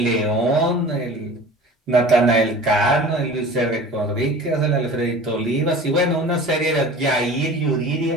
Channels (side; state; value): both; normal; correlation 0.40